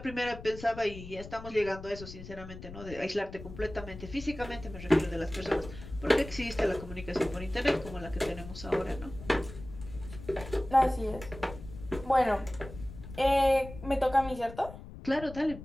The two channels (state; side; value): noise; left; rumble, 13 dB below the sound